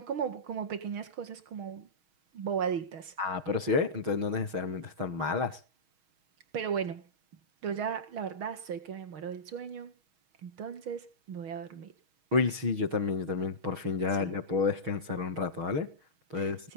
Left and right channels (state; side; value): late; left; 6.3 ms